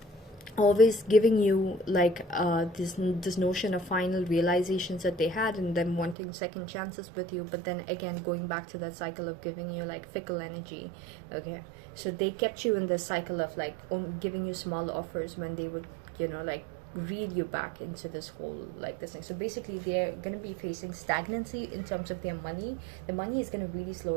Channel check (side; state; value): left; drops out; at 6.2 s